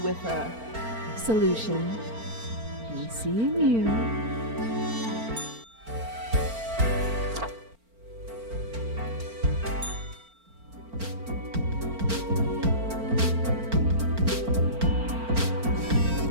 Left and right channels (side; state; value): left; late; 4.4 ms